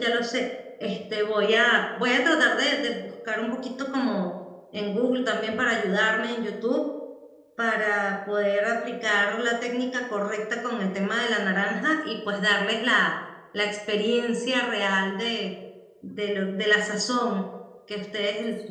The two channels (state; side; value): identical; both; correlation 1.00